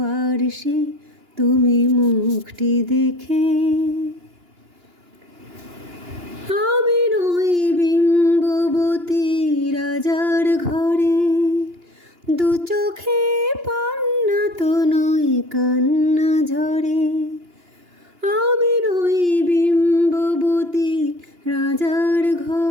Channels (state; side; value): late; left; 2.9 ms